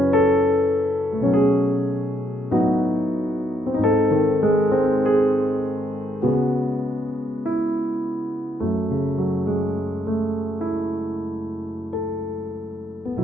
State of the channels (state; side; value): normal; both; correlation 0.76